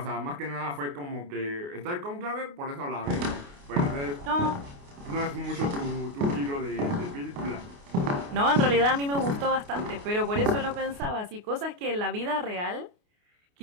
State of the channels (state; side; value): late; left; 28 ms